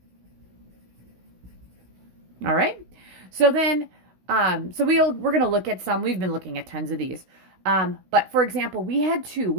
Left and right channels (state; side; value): late; left; 16 ms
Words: All right. So then, we're going to look at some. We've been looking at tons of these. But for example, we had two.